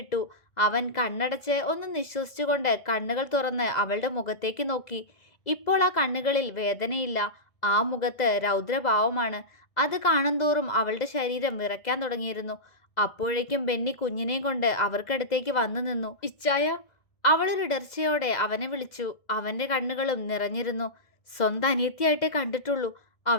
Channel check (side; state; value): right; late; 2.0 ms